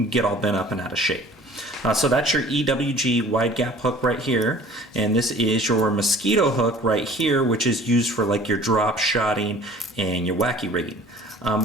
get all bent up and out of shape. So that's your EWG wide gap hook right here, and this is your mosquito hook right here, which is used for like your drop shotting and your wacky rigging.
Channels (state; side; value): normal; both; correlation 0.49